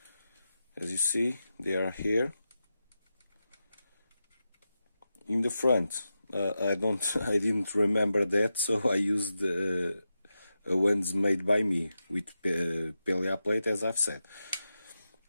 As you see, they are here. In the front I didn't remember that, so I used ones made by me with PLA plate, as I've said.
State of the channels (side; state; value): both; inverted; correlation -0.90